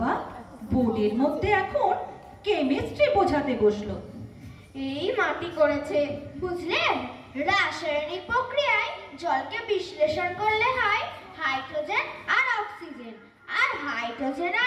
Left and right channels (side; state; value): both; identical; correlation 1.00